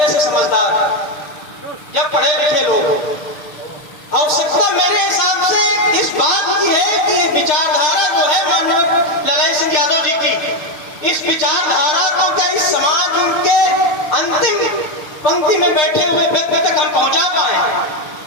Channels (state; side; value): late; right; 6.6 ms